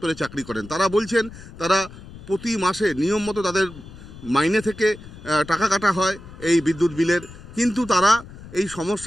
চাকরি করেন। তারা বলছেন তারা প্রতি মাসে নিয়ম মতো তাদের মাইনে থেকে টাকা কাটা হয় এই বিদ্যুৎ বিলের, কিন্তু তারা এই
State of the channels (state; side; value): noise; left; rumble, 17 dB below the sound